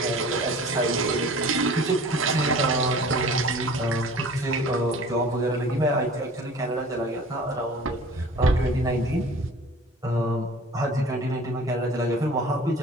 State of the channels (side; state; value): both; normal; correlation 0.44